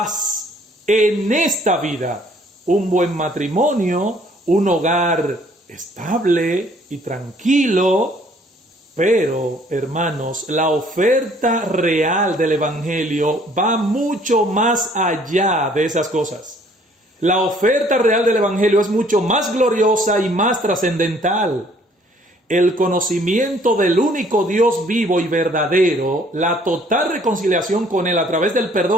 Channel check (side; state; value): both; normal; correlation 0.60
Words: en esta vida, un buen matrimonio, un hogar estable y tranquilo. Pero, hermanos, la oferta real del evangelio va mucho más allá de esas cosas. La oferta real del evangelio es mucho más gloriosa y más trascendental. El conocimiento del único Dios vivo y verdadero, la total reconciliación con Él a través del